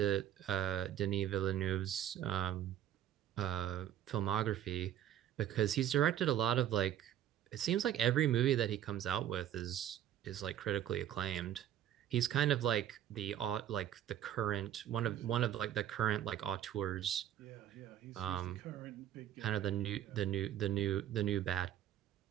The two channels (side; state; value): left; quieter; 11.2 dB